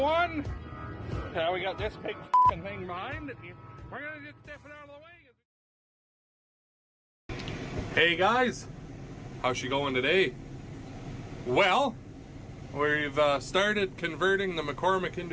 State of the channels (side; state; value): both; identical; correlation 1.00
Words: We got this big fucking thing behind it. We're gonna just step it out of the way. Hey guys, how's she going today? Well, we've started converting the McCormick